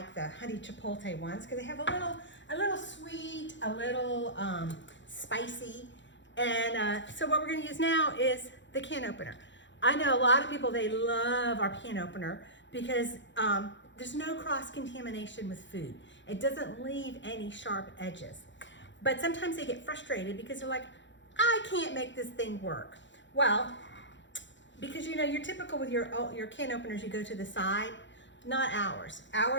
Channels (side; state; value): right; late; 0.54 ms